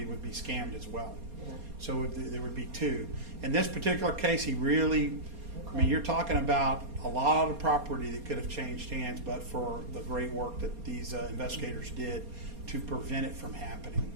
would be scammed as well. Yeah. So there would be two. In this particular case, he really, I mean, you're talking about a lot of property that could have changed hands, but for the great work that these investigators did to prevent it from happening.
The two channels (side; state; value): left; late; 4.2 ms